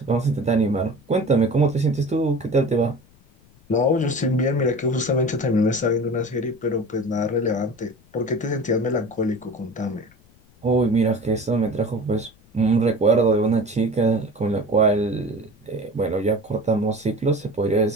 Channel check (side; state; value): left; noise; rumble, 29 dB below the sound